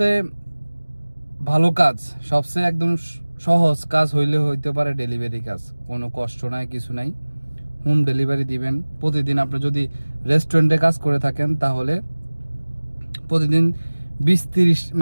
ভালো কাজ, সবচেয়ে একদম সহজ কাজ হইতে পারে ডেলিভারি কাজ। কোনো কষ্ট নাই, কিছু নাই। হোম ডেলিভারি দিবেন প্রতিদিন। আপনি যদি রেস্টুরেন্টে কাজ করে থাকেন তাহলে প্রতিদিন 20-30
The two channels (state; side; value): inverted; both; correlation -1.00